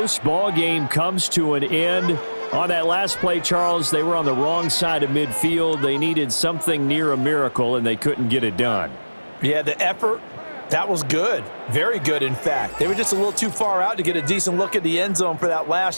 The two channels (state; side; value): inverted; both; correlation -1.00